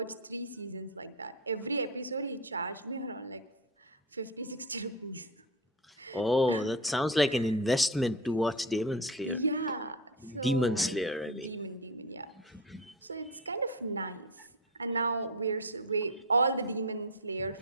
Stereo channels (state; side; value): normal; both; correlation 0.21